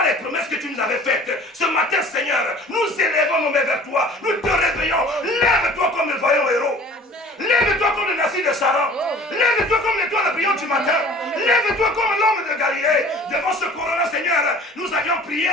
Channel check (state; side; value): normal; both; correlation 0.47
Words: les promesses que tu nous avais faites. Ce matin, Seigneur, nous élevons nos mains vers toi. Nous te réveillons. Lève-toi comme le vaillant héros. Lève-toi comme le Nassi de Saran. Lève-toi comme l'étoile brillante du matin. Lève-toi comme l'homme de Galilée. Devant ce corona, Seigneur, nous avions prié.